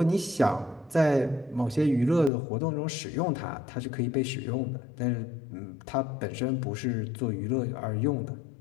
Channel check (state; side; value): drops out; right; at 2.3 s